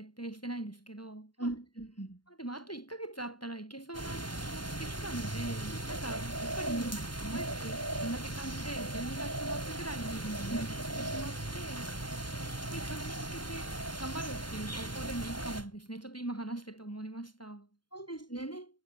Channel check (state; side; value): late; right; 0.71 ms